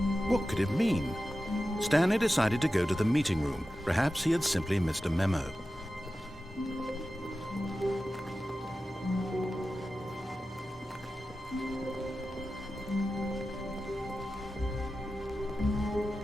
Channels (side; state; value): both; normal; correlation 0.93